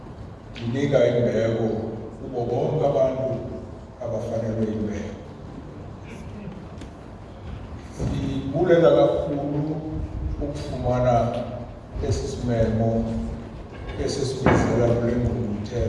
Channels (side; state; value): both; identical; correlation 1.00